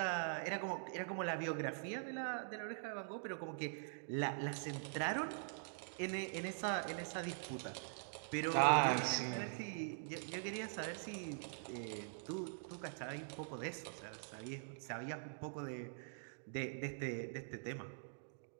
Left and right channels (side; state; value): left; silent; digital silence